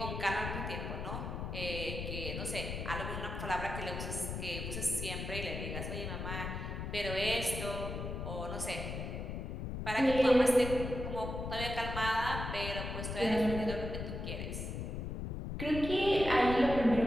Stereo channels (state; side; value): noise; left; rumble, 5 dB below the sound